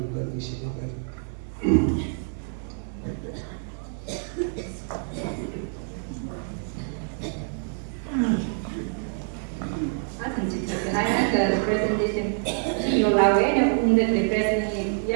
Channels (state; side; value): silent; left; 56 dB below the other